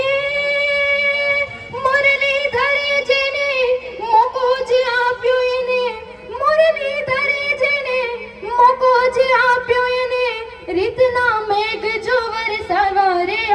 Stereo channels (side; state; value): both; identical; correlation 1.00